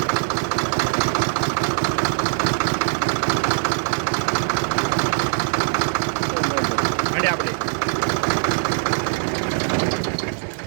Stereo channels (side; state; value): left; silent; digital silence